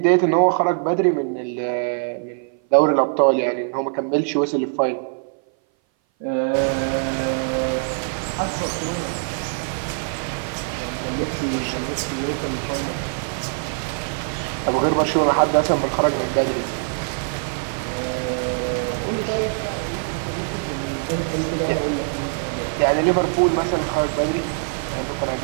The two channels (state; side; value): silent; left; 58 dB below the other